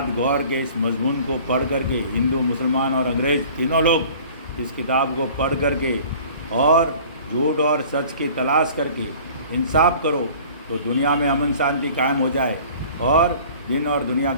गौर के इस मजमून को पढ़ करके हिंदू, मुसलमान और अंग्रेज तीनों लोग इस किताब को पढ़ करके और झूठ और सच की तलाश करके इंसाफ करो तो दुनिया में अमन शांति कायम हो जाए और दिन और दुनिया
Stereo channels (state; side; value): inverted; both; correlation -0.47